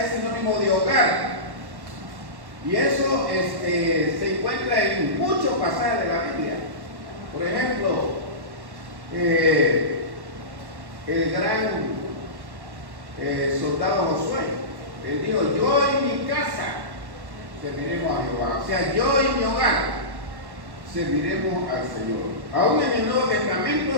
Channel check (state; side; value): late; left; 1.1 ms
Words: sinónimo de hogar. Y eso se encuentra en muchos pasajes de la Biblia. Por ejemplo, el gran soldado Josué, él dijo, yo y mi casa serviremos a Jehová. O sea, yo y mi hogar serviremos al Señor. Aún en el Nuevo Testamento